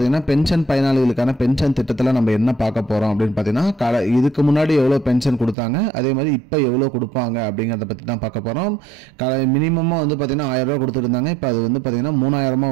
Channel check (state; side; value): drops out; left; at 5.6 s